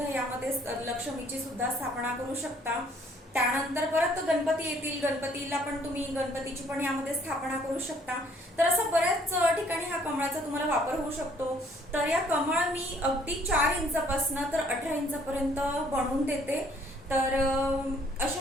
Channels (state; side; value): normal; both; correlation 0.62